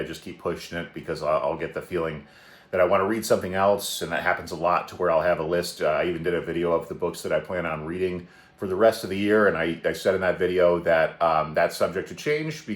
just keep pushing it because I'll get the feeling that I want to read something else, and that happens a lot to where I'll have a list. I even did a video of the books that I plan on reading for the rest of the year, and I said in that video that that's subject to change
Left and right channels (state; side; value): identical; both; correlation 1.00